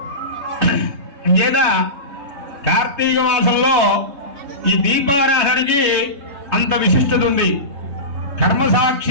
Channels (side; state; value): left; late; 3.5 ms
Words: అది లేదా కార్తీక మాసంలో ఈ దీపారాధనకి అంత విశిష్టత ఉంది. కర్మ